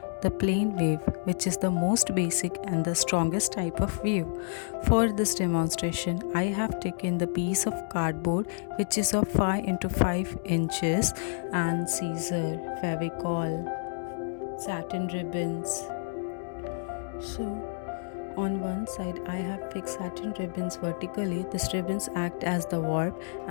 the plain weave, which is the most basic and the strongest type of weave. For this demonstration I have taken the piece of cardboard which is of 5 into 5 inches and scissor, fevicol, satin ribbons. So on one side I have fixed satin ribbons vertically. These ribbons act as the warp,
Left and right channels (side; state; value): right; silent; digital silence